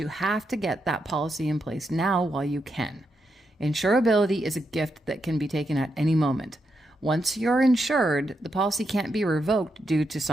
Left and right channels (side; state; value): both; normal; correlation 0.83